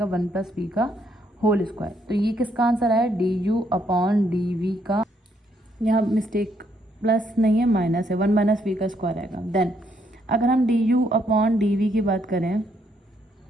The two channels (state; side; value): normal; both; correlation 0.73